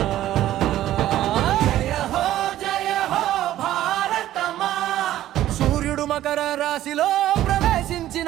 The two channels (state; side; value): quieter; left; 13.4 dB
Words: మకర రాశిలో ప్రవేశించిన